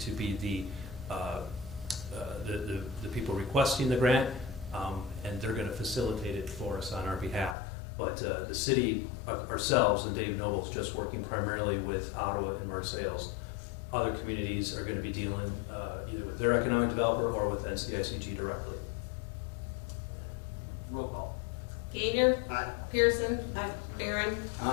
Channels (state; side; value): drops out; right; at 7.6 s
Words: to be the the people requesting the grant, and they're going to facilitate it for us on our behalf. But the city ourselves and Dave Noble's just working primarily with Ottawa and Marseilles. Other communities are going to be dealing either with their economic developer or with NCICG directly. Roll call. Gainer. Aye. Pearson. Aye. Barron.